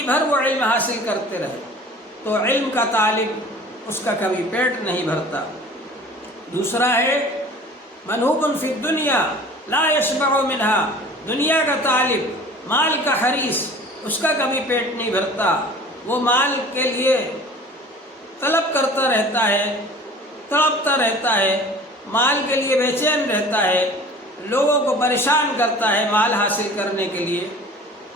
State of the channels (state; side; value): normal; both; correlation 0.44